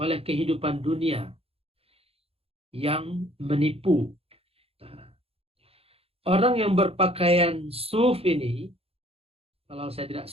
kehidupan dunia yang menipu. Nah, orang yang berpakaian suf ini, kalau saya tidak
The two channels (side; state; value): left; late; 0.28 ms